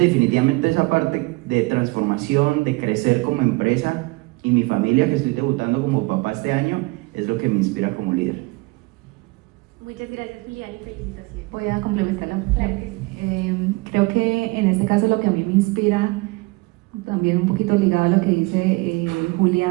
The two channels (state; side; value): quieter; left; 24.7 dB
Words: esa parte de transformación, de crecer como empresa, y mi familia, que estoy debutando como papá este año, es lo que me inspira como líder. Muchas gracias, Julián, y felicitaciones. Voy a complementarla. Claro que sí. Creo que en este caso lo que a mí me inspira, también un poquito ligado a lo que dice